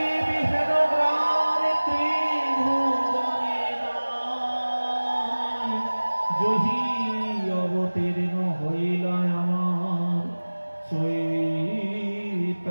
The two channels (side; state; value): both; inverted; correlation -1.00